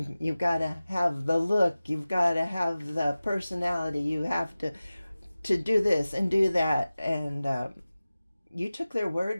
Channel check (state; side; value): inverted; both; correlation -0.97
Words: got to have the look, you've got to have the personality, you have to do this and do that. And you took their